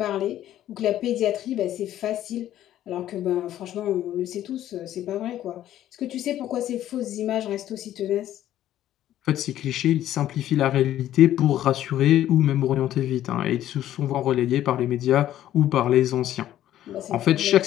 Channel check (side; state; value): right; quieter; 12.4 dB